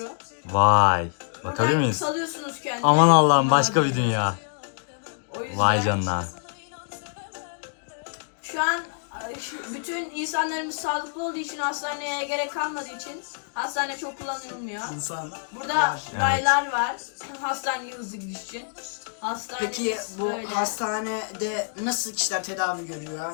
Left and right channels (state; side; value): silent; right; digital silence